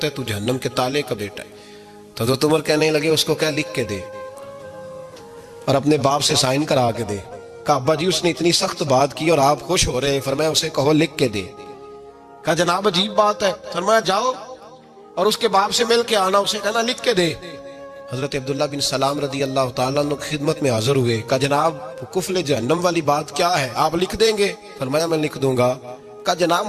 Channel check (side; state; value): both; identical; correlation 1.00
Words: ہے تو جہنم کے تالے کا بیٹا ہے۔ تو حضرت عمر کہنے لگے اس کو کیا لکھ کے دے اور اپنے باپ سے سائن کرا کے دے۔ کہا ابا جی اس نے اتنی سخت بات کی اور آپ خوش ہو رہے ہیں، فرمایا اسے کہو لکھ کے دے۔ کہا جناب عجیب بات ہے، فرمایا جاؤ اور اس کے باپ سے مل کے آنا، اسے کہنا لکھ کے دے۔ حضرت عبداللہ بن سلام رضی اللہ تعالیٰ عنہ کی خدمت میں حاضر ہوئے۔ کہا جناب کفل جہنم والی بات کیا ہے، آپ لکھ دیں گے؟ فرمایا میں لکھ دوں گا۔ کہا جناب